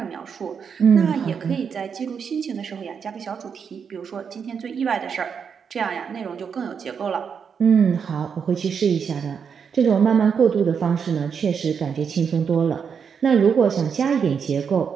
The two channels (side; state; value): left; quieter; 6.7 dB